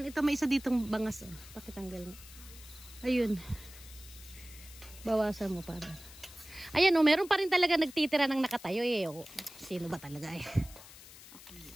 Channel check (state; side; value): noise; left; hiss, 18 dB below the sound